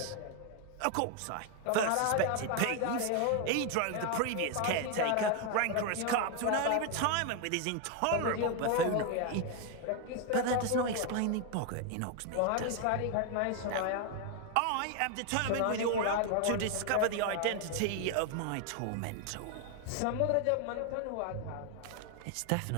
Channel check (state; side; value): different; both; correlation 0.01